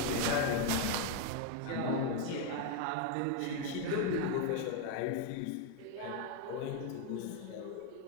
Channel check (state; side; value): different; both; correlation 0.01